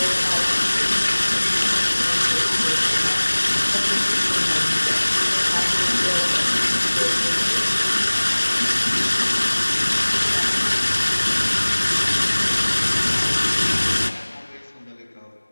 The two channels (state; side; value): inverted; both; correlation -1.00